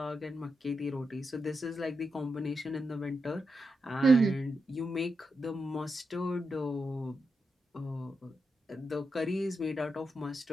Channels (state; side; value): normal; both; correlation 0.86